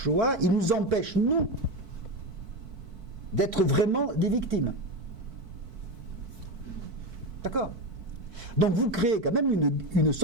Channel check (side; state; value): left; late; 4.5 ms